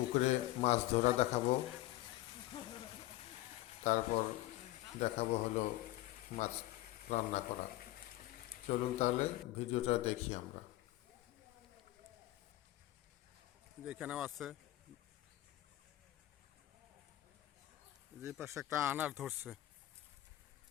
মাছ ধরা দেখাবো, তারপর দেখাবো হলো মাছ রান্না করা। চলুন তাহলে ভিডিওটা দেখি আমরা। যেখানেও আছে, যে পাশে একটা আনার ধরছে,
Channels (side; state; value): right; quieter; 16.8 dB